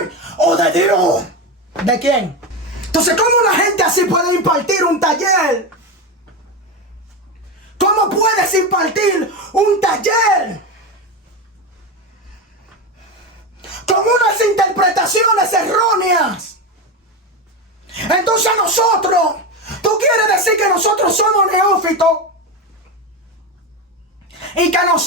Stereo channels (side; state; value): both; normal; correlation 0.17